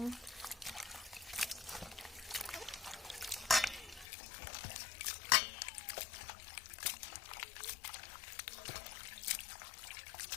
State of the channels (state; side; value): drops out; right; at 4.0 s